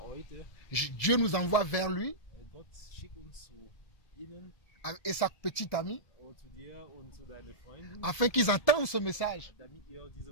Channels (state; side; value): late; right; 1.7 ms